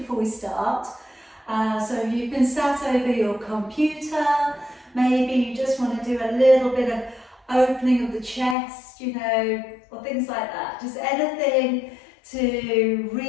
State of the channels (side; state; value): right; drops out; at 8.6 s